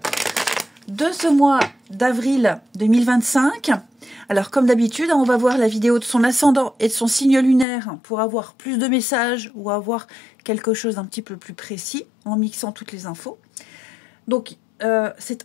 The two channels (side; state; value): right; drops out; at 7.7 s